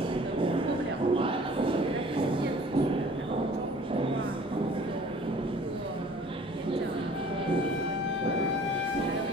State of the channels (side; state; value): both; normal; correlation 0.50